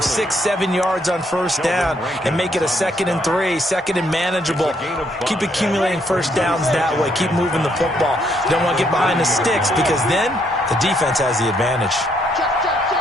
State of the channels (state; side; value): normal; both; correlation 0.72